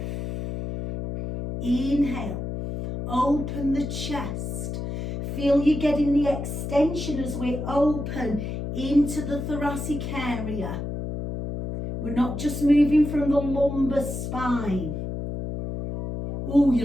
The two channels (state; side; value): noise; left; hum, 5 dB below the sound